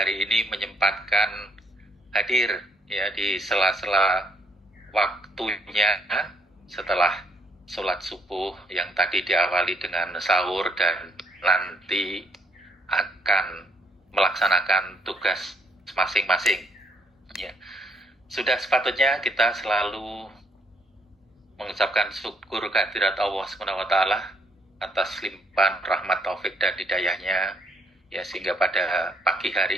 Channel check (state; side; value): normal; both; correlation 0.68